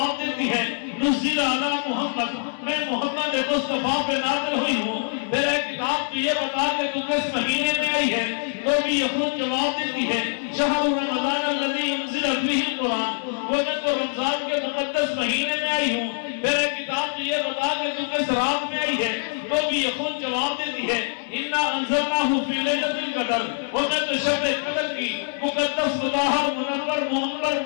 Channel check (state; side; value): silent; right; 58 dB below the other